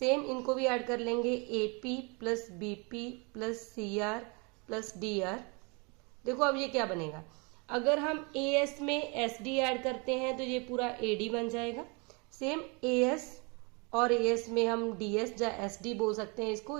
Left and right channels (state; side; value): quieter; left; 31.1 dB